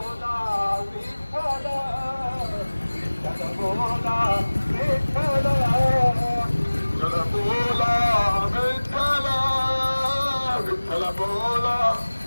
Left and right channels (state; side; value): inverted; both; correlation -1.00